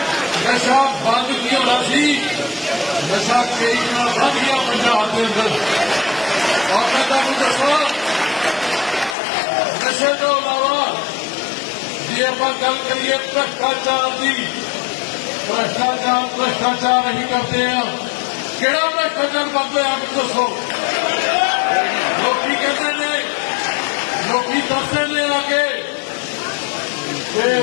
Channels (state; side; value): drops out; right; at 9.2 s